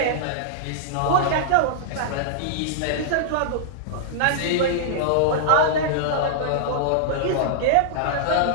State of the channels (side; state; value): both; different; correlation -0.02